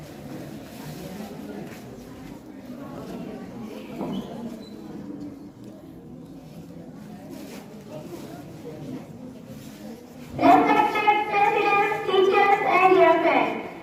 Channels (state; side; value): identical; both; correlation 1.00